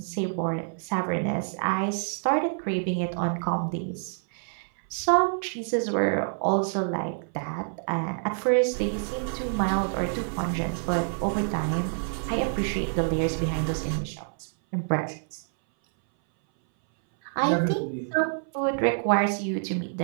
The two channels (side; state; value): left; silent; 60 dB below the other